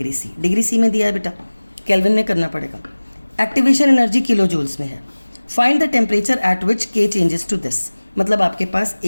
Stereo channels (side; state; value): both; inverted; correlation -1.00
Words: C. Degree C में दिया है बेटा, Kelvin में करना पड़ेगा. Activation energy kilojoules में है. Find the temperature at which K changes to this. मतलब आपके पास